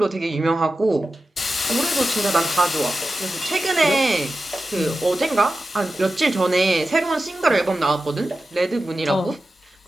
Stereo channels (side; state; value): both; normal; correlation 0.93